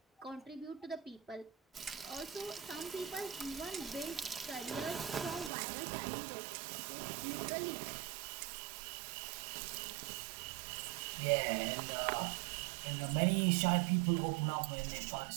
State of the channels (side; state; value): left; drops out; at 5.5 s